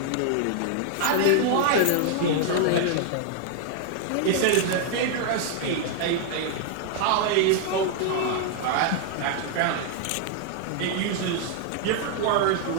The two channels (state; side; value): different; both; correlation 0.00